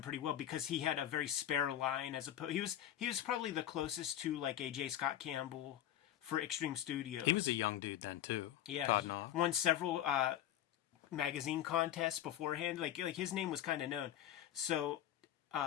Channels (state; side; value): quieter; right; 11.7 dB